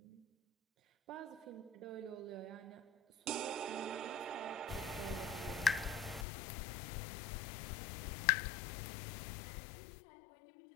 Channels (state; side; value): drops out; right; at 6.2 s